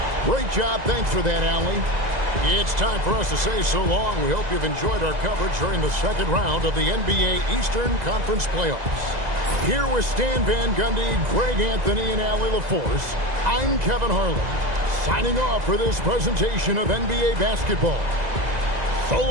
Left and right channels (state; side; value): late; left; 2.0 ms